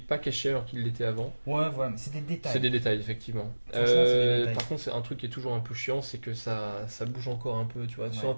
pas caché alors qu'il l'était avant. Ouais, voilà, mais c'est des détails. C'est des détails effectivement. Franchement, c'est des détails. Par contre c'est un truc qui est toujours un peu chiant, c'est que ça bouge encore un peu, tu vois. Ouais. Soit en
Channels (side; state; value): both; inverted; correlation -1.00